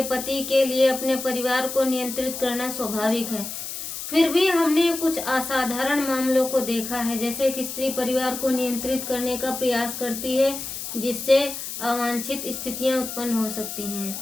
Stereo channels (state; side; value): noise; left; hiss, 7 dB below the sound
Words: पति के लिए अपने परिवार को नियंत्रित करना स्वाभाविक है। फिर भी हमने कुछ असाधारण मामलों को देखा है, जैसे कि स्त्री परिवार को नियंत्रित करने का प्रयास करती है, जिससे अवांछित स्थितियां उत्पन्न हो सकती हैं।